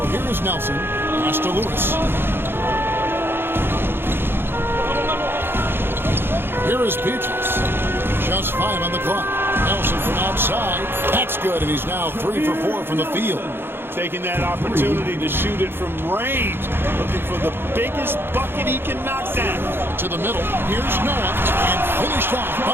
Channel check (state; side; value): late; left; 0.10 ms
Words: here is Nelson. Pass to Lewis. Here is Peaches. Just 5 on the clock. Nelson from outside. That's good, and he's now 3 for 4 from the field. Taking that opportunity to shoot it from range. Looking for the biggest bucket he can knock down. To the middle. Here's Noah. And finished off